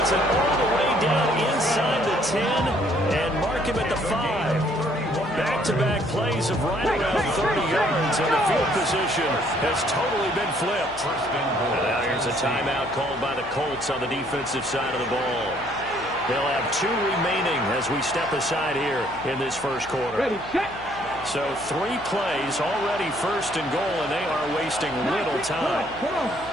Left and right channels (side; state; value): left; noise; hum, 18 dB below the sound